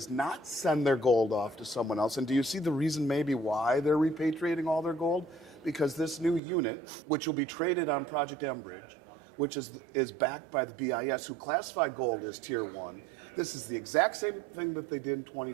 not send their gold off to someone else. And do you see the reason maybe why they're repatriating all their gold? Because this new unit, which will be traded on Project Enbridge, which is backed by the BIS, who classify gold as tier one. This is the exact same thing that they did in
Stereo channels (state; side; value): drops out; left; at 6.4 s